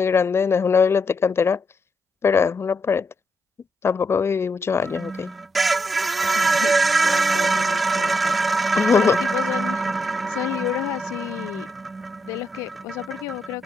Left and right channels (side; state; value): both; normal; correlation 0.81